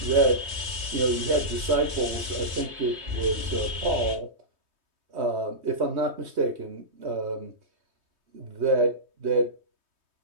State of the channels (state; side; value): late; left; 3.2 ms